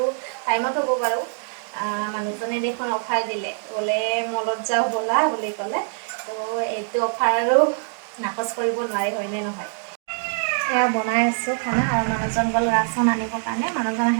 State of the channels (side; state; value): left; silent; 63 dB below the other